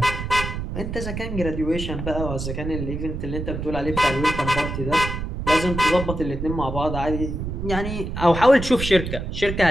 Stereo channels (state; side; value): noise; right; rumble, 5 dB below the sound